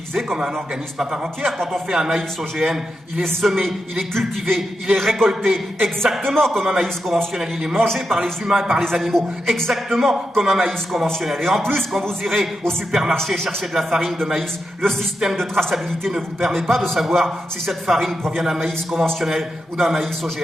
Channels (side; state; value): both; normal; correlation 0.86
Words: comme un organisme à part entière. Quand on fait un maïs OGM, il est semé, il est cultivé, il est récolté exactement comme un maïs conventionnel. Il est mangé par les humains et par les animaux exactement comme un maïs conventionnel. Et en plus, quand vous irez au supermarché chercher de la farine de maïs, le système de traçabilité ne vous permet pas de savoir si cette farine provient d'un maïs conventionnel ou d'un maïs